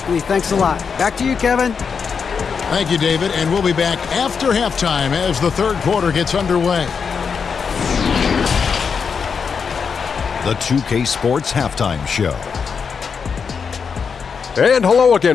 Thanks a lot. Back to you, Kevin. Thank you, David. And we'll be back after halftime as the third quarter gets underway. The 2K Sports Halftime Show. And hello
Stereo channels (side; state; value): right; quieter; 6.0 dB